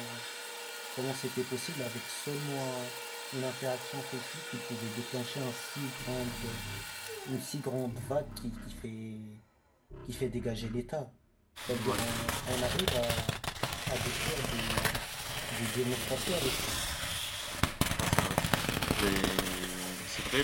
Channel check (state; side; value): identical; both; correlation 1.00